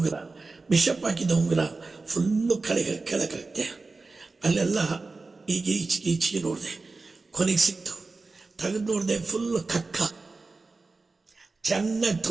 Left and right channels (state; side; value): quieter; left; 3.8 dB